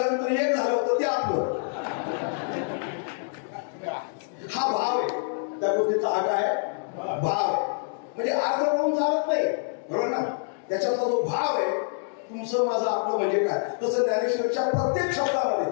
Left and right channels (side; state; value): right; silent; digital silence